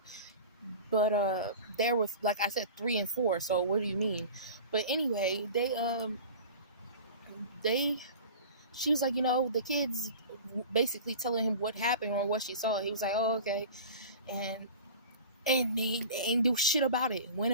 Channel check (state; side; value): inverted; both; correlation -0.37